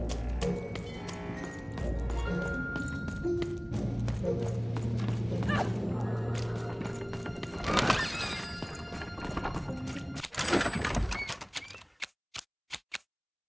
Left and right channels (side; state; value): both; identical; correlation 1.00